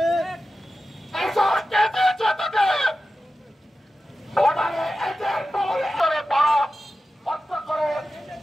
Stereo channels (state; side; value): normal; both; correlation 0.93